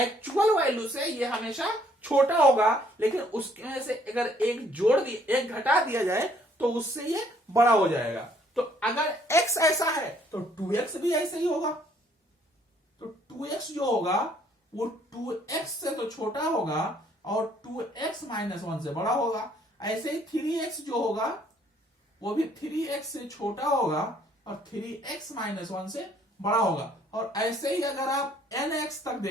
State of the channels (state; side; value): normal; both; correlation 0.64